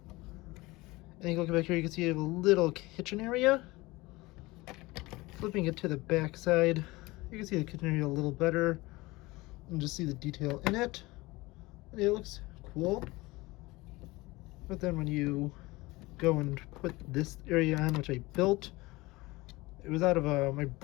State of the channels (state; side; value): quieter; right; 21.4 dB